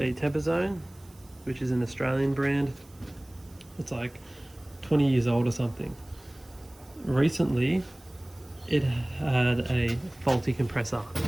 Temper Zone, which is an Australian brand. It's like 20 years old or something. Recently, it had a faulty compressor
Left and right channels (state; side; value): noise; right; hiss, 28 dB below the sound